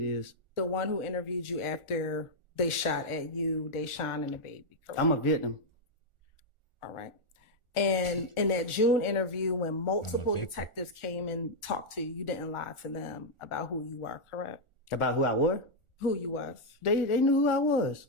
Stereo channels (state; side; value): late; right; 1.4 ms